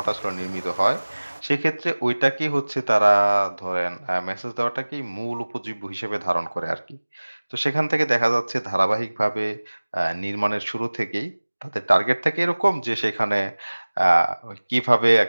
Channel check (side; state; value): both; inverted; correlation -1.00